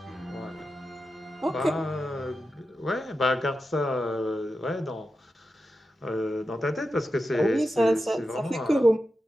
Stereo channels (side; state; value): both; normal; correlation 0.90